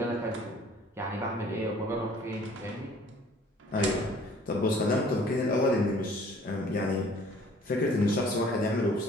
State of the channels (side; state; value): both; normal; correlation 0.54